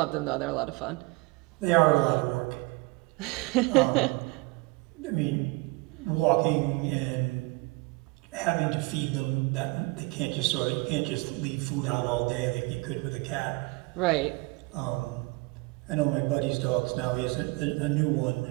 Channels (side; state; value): left; quieter; 25.3 dB